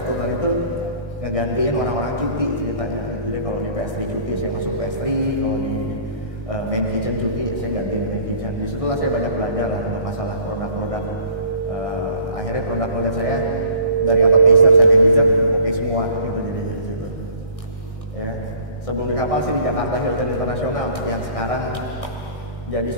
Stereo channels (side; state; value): right; late; 1.6 ms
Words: turnan itu ngegantiin orang-orang cuti ceritanya. Jadi kalau di pastry cuti saya masuk pastry, kalau di main kitchen cuti saya gantiin main kitchen. Disitulah saya banyak belajar lah untuk masalah produk-produk. Akhirnya produk saya dari appetizer sampai dessert oke semua gitu jadi di situ. Ya. Sebelum di kapal sih di Jakarta Hilton Internasional yang sekarang jadi